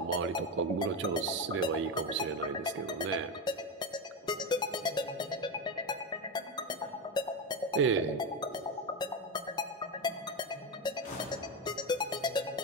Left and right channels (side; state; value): both; normal; correlation 0.14